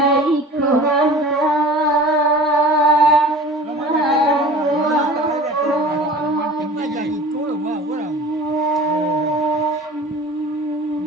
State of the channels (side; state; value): both; normal; correlation 0.41